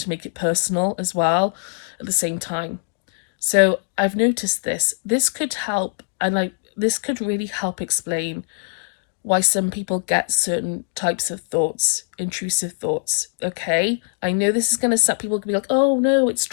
to make it personal as well. At the same time. So I've noticed this. This could help, and this could really help explain why some people get certain types of thoughts, intrusive thoughts. Okay, I know this is gonna set people can be like, oh no, it's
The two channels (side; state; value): right; silent; digital silence